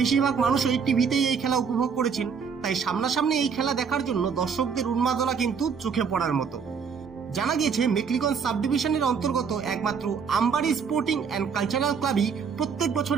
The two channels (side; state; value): left; quieter; 6.3 dB